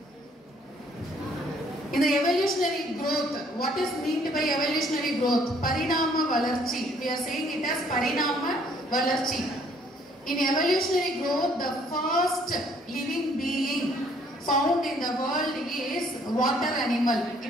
evolutionary growth, what is meant by evolutionary growth? Parinama valarchi. We are saying it as parinama valarchi. In evolutionary growth, the first living being found in the world is water animal.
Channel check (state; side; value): normal; both; correlation 0.63